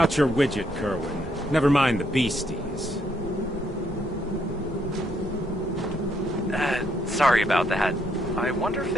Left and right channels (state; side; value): normal; both; correlation 0.73